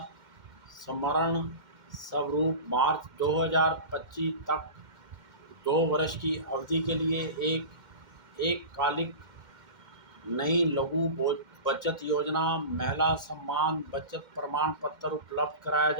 स्मरण स्वरूप मार्च 2025 तक 2 वर्ष की अवधि के लिए एक कालिक नई लघु बचत योजना महिला सम्मान बचत प्रमाण पत्र उपलब्ध कराया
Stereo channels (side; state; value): left; late; 2.1 ms